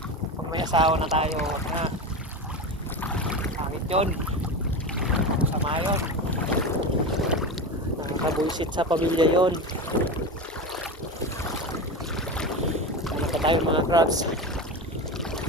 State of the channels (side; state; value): both; normal; correlation 0.23